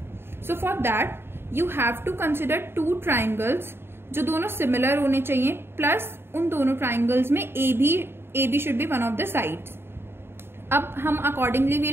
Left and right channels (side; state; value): left; late; 0.11 ms